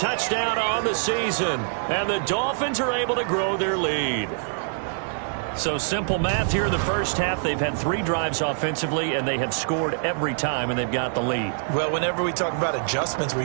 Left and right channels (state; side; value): silent; left; digital silence